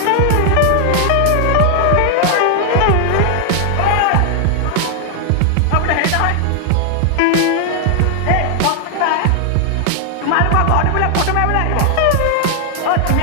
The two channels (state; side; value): different; both; correlation 0.00